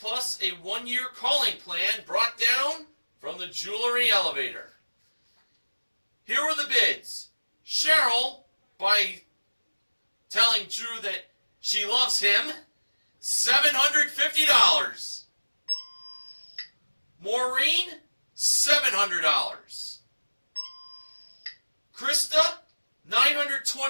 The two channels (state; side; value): inverted; both; correlation -1.00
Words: plus a 1-year calling plan brought down from the Jewelry Elevator. Here were the bids. Cheryl, by telling Drew that she loves him, $750. Maureen, $700. Krista,